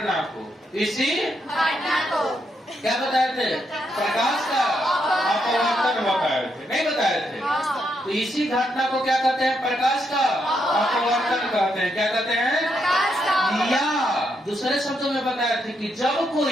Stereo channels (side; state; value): both; normal; correlation 0.79